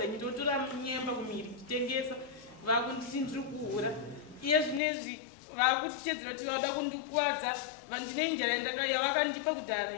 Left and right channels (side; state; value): right; drops out; at 4.8 s